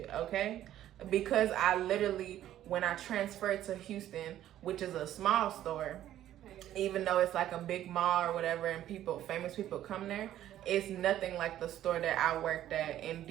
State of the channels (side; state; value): left; quieter; 12.3 dB